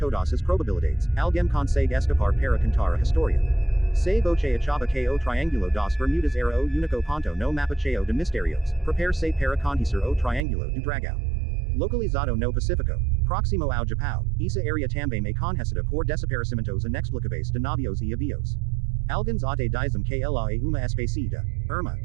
as probabilidades, alguém consegue escapar para contar a história. Se você achava que o Triângulo das Bermudas era o único ponto no mapa cheio de mistérios, prepare-se para conhecer o Triângulo do Dragão. Localizado no Pacífico, próximo ao Japão, essa área também é conhecida por desaparecimentos inexplicáveis de navios e aviões. Alguns até dizem que ela é uma espécie de irmã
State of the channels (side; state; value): left; drops out; at 10.5 s